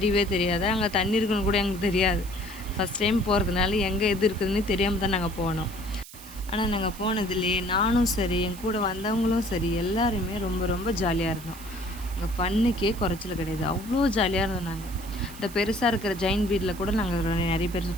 தெரியாது. அங்கே தண்ணி இருக்குன்னு கூட எங்களுக்கு தெரியாது. ஃபஸ்ட் டைம் போகிறதுனால எங்கே எது இருக்குதுன்னு தெரியாமல் தான் நாங்கள் போனோம். ஆனால் நாங்கள் போனதுலேயே நானும் சரி, என் கூட வந்தவங்களும் சரி, எல்லாருமே ரொம்ப ரொம்ப ஜாலியாக இருந்தோம். அங்கே ஃபன்னுக்கே குறைச்சல் கிடையாது. அவ்வளோ ஜாலியாக இருந்தோம். நாங்கள் இந்த பெருசாக இருக்கிற ஜெயின் வீட்டில் கூட நாங்கள் நிறைய பேர்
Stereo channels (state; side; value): noise; right; hiss, 17 dB below the sound